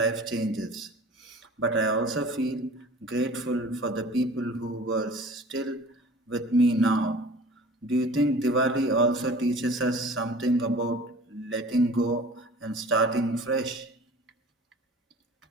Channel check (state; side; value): normal; both; correlation 0.43